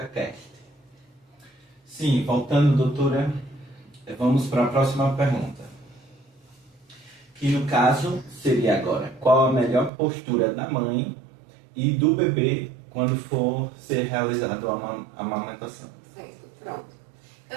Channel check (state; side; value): drops out; left; at 9.9 s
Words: Sim, voltando, doutora, vamos para a próxima pergunta. Que no caso seria agora, qual a melhor postura da mãe e do bebê quando for ser realizado a amamentação? Certo, pronto.